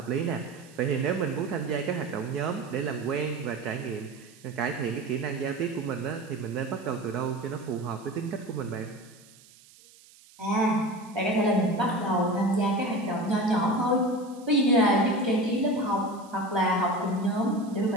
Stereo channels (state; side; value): noise; right; hiss, 25 dB below the sound